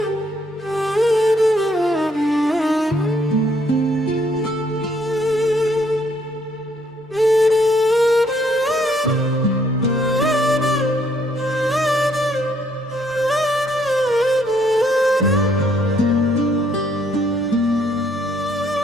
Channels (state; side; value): normal; both; correlation 0.68